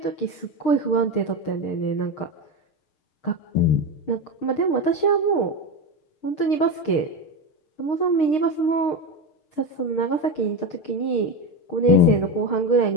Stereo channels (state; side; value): late; right; 6.5 ms